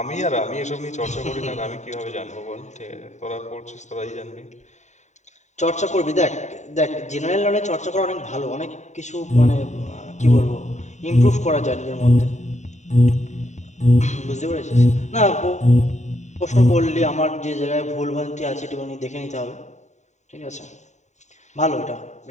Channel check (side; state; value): right; late; 0.34 ms